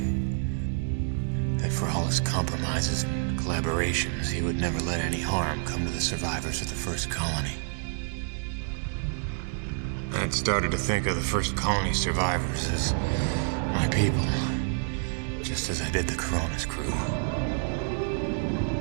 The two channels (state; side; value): silent; left; 59 dB below the other